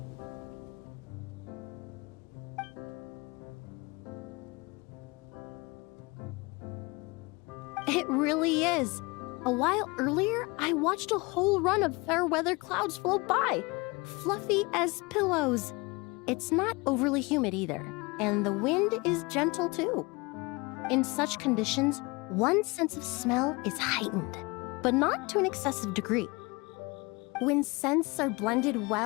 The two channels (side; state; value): right; quieter; 25.9 dB